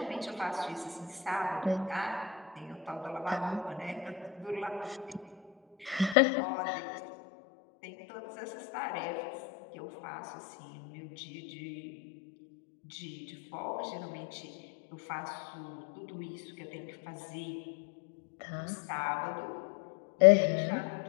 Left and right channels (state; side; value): drops out; right; at 6.2 s